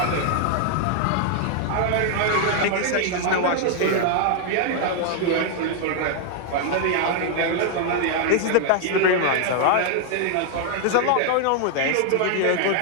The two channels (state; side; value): different; both; correlation 0.00